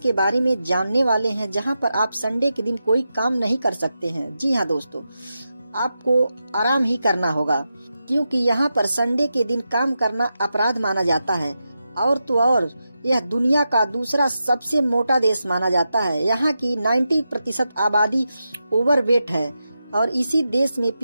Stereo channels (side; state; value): both; inverted; correlation -0.89